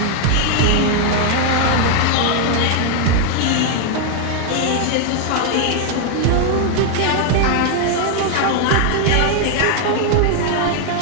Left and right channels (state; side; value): different; both; correlation 0.00